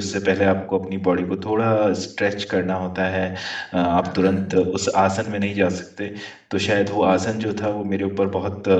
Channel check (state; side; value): identical; both; correlation 1.00